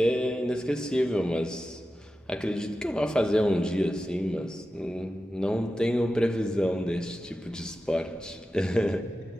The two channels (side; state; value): both; normal; correlation 0.92